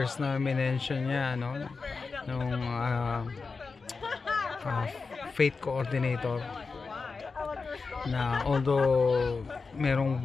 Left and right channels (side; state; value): right; quieter; 4.5 dB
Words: na minention niya, no? Nung faith coordinator, na although merong